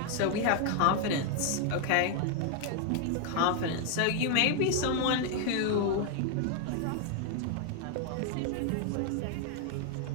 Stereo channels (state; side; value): different; both; correlation 0.00